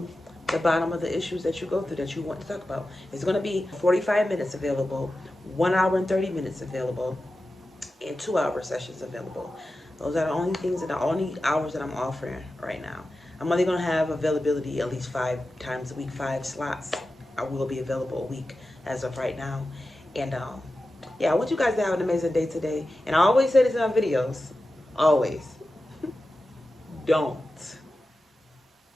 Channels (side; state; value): both; normal; correlation 0.93